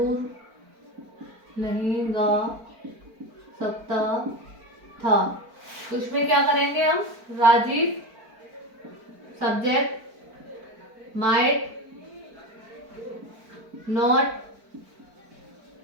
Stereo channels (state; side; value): late; left; 4.5 ms